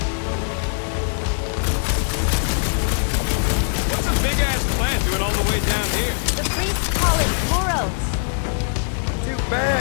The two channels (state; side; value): silent; right; 65 dB below the other